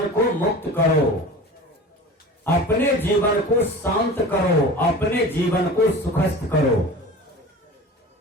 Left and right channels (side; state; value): both; normal; correlation 0.37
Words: को मुक्त करो, अपने जीवन को शांत करो, अपने जीवन को सुखस्थ करो।